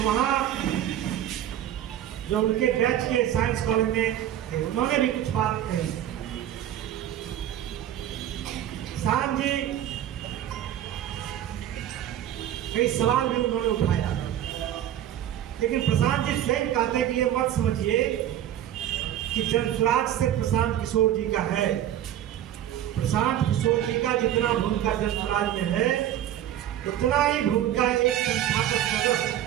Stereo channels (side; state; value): left; quieter; 11.5 dB